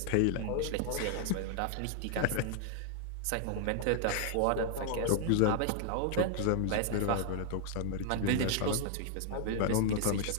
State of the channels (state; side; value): different; both; correlation 0.00